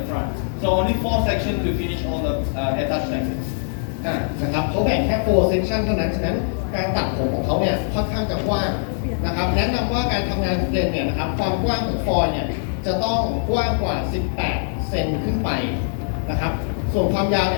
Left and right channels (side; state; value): right; silent; digital silence